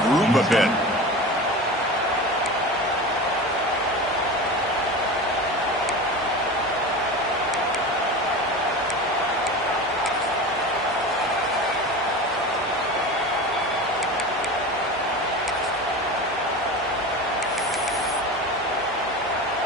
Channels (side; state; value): both; normal; correlation 0.30